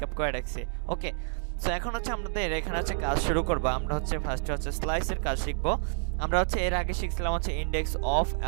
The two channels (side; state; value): left; silent; digital silence